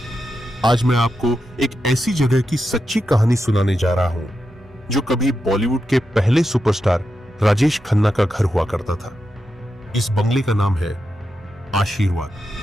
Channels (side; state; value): both; normal; correlation 0.88